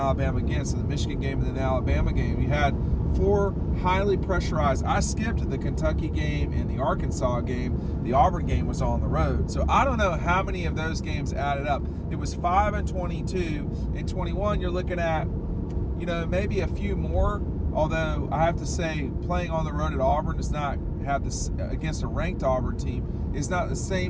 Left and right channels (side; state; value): both; identical; correlation 1.00